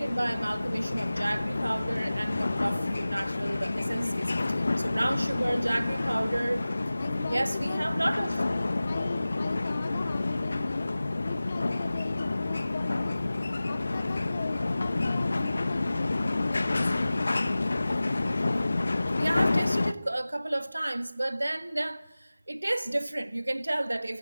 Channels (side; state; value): both; inverted; correlation -0.97